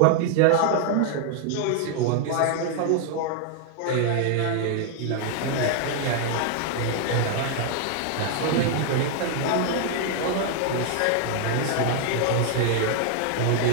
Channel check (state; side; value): different; both; correlation 0.00